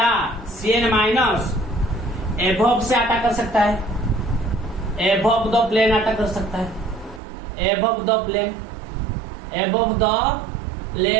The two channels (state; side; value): drops out; left; at 7.2 s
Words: Cn माइनस एबव से अटैक कर सकता है, एबव द प्लेन अटैक कर सकता है, एबव द प्लेन